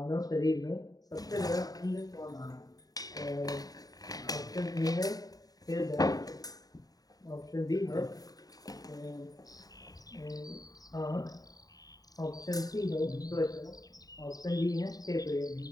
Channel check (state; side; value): late; right; 0.18 ms